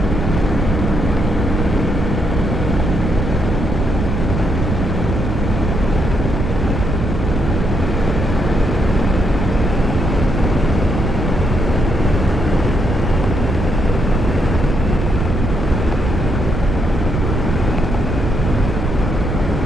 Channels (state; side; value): noise; right; rumble, 2 dB below the sound